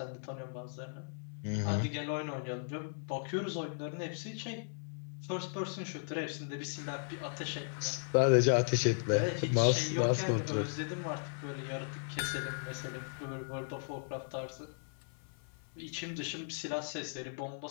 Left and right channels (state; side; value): silent; right; 53 dB below the other